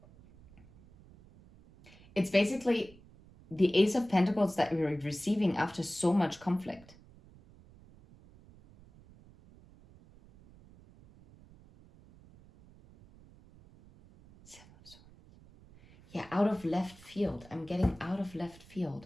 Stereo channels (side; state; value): right; noise; rumble, 24 dB below the sound